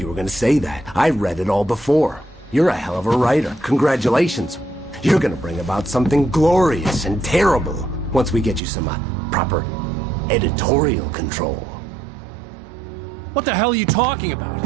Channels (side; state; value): left; drops out; at 8.6 s